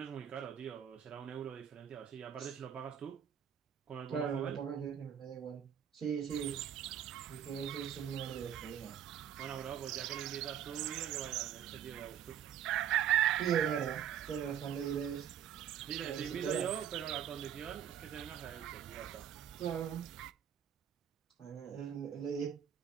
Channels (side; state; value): left; quieter; 9.3 dB